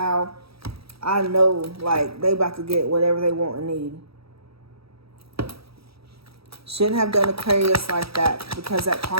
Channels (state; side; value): late; left; 0.77 ms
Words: I know, like, they about to get whatever they want and need. Shouldn't have done Aquarius like that because that